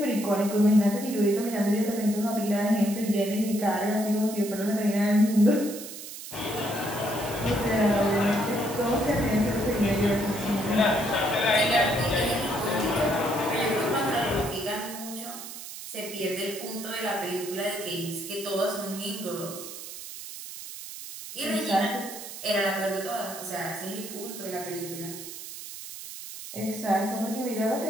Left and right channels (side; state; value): right; noise; hiss, 11 dB below the sound